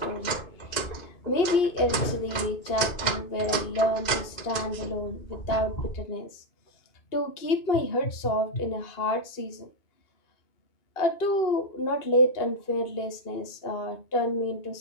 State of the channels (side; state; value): right; late; 2.5 ms